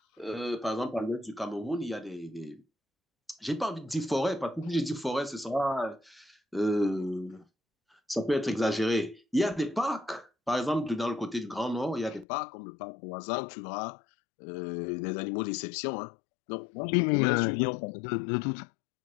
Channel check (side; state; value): right; drops out; at 12.2 s